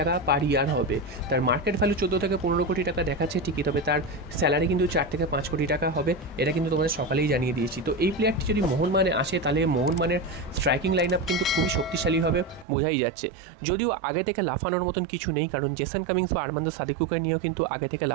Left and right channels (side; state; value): left; drops out; at 12.7 s